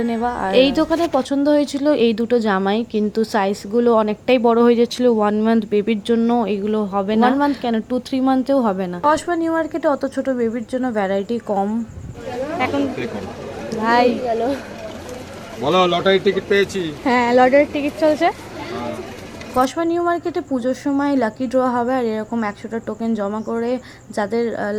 নেওয়া। আর এই দোকানে পছন্দ হয়েছিল এই দুটো জামাই, কিন্তু সাইজগুলো অনেকটাই বড় হয়ে যাচ্ছিল 1 মান্থ বেবির জন্য। এগুলো হবে না, 1 মান্থ কেন 2-3 মান্থেও হবে না। কসবা নিউ মার্কেটে অত ছোট বেবির জন্য ভ্যারাইটি কম। এখন ভাই বলো, লটারি টিকিট পেয়েছি। হ্যাঁ, লটারির টিকিট চলছে। কসবা নিউ মার্কেটে পুজোর সময় লাকি ড্র হবে, আর এরকম 100টা টোকেন জমা করে যাদের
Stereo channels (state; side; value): identical; both; correlation 1.00